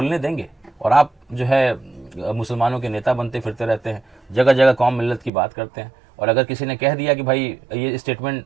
देंगे? और आप जो है मुसलमानों के नेता बनते फिरते रहते हैं, जगह जगह कौम मिल्लत की बात करते हैं, और अगर किसी ने कह दिया कि भाई ये स्टेटमेंट,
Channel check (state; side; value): drops out; left; at 5.3 s